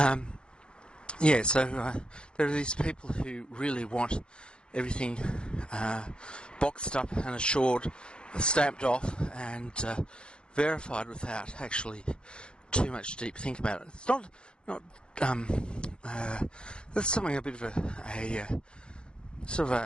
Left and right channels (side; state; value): right; late; 0.051 ms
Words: So there are these people who really want everything boxed up and assured, stamped off, and verified without actually too much deep think about it. It's not that's something a bit of a sort of